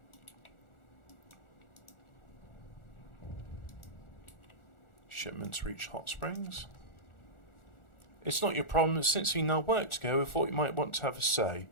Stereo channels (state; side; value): late; right; 1.4 ms